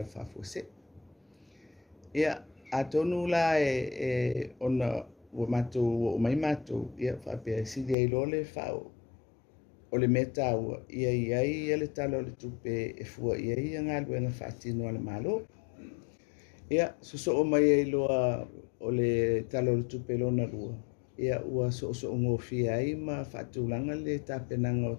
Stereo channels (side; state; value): right; drops out; at 8.0 s